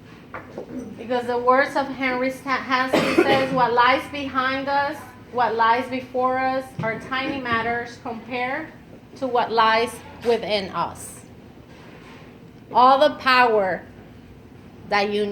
Because the words of Henry Hansky says, what lies behind us, what lies before us are tiny matters compared to what lies within us. All the power that you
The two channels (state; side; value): identical; both; correlation 1.00